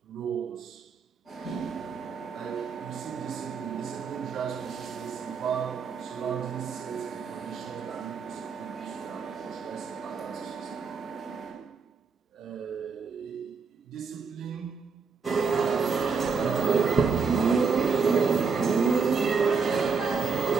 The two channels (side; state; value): left; quieter; 5.3 dB